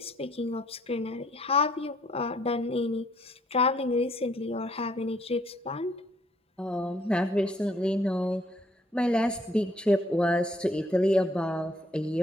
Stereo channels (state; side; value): normal; both; correlation 0.66